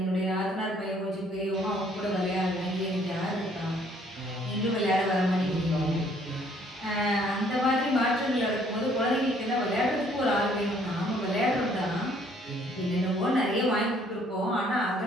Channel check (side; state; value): both; normal; correlation 0.62